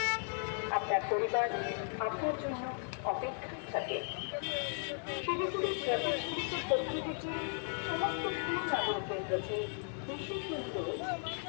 আপনার পরিবার আপনার জন্য অপেক্ষায় থাকে। শিলিগুড়ির ট্রাফিক পুলিশের পক্ষ থেকে সমস্ত সুনাগরিকদের কাছে বিশেষ অনুরোধ,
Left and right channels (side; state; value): right; silent; 54 dB below the other